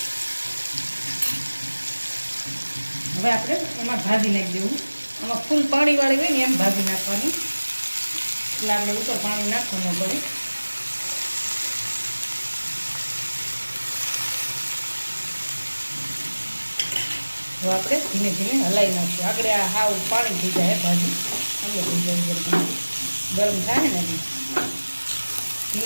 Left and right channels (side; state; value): both; inverted; correlation -1.00